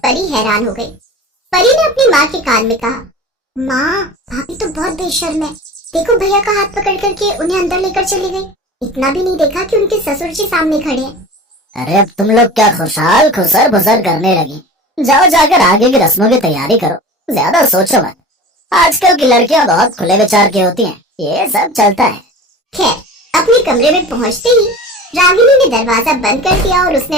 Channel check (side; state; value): both; normal; correlation 0.36